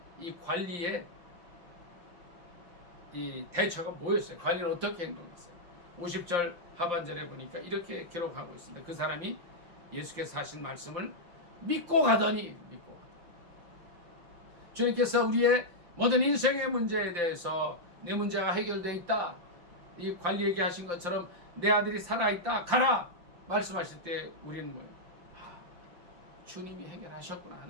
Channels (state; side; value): late; left; 5.8 ms